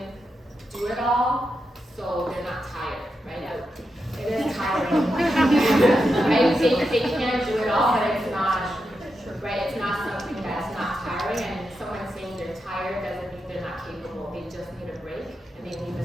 do it all, so they can do it all, but it's not, right, it's not something that's not tiring, and someone saying they're tired doesn't mean they're not capable. They just need a break, and they need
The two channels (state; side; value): normal; both; correlation 0.87